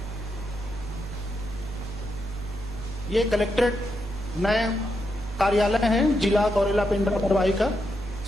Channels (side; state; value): right; noise; hum, 12 dB below the sound